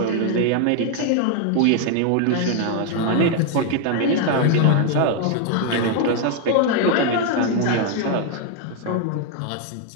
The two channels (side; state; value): both; different; correlation 0.00